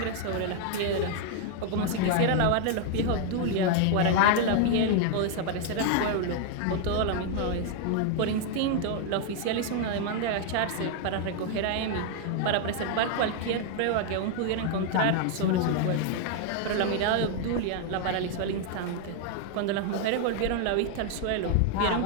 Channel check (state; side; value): different; both; correlation 0.00